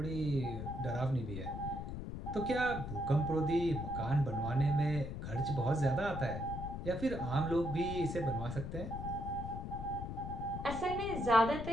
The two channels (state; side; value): noise; left; rumble, 6 dB below the sound